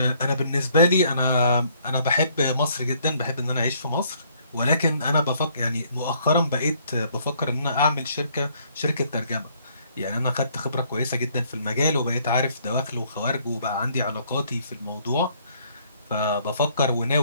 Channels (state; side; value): inverted; both; correlation -0.65